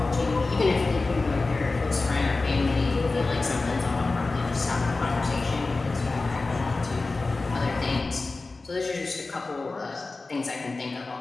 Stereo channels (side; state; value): right; quieter; 3.6 dB